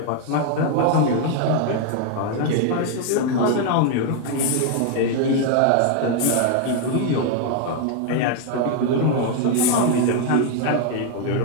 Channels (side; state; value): both; different; correlation 0.00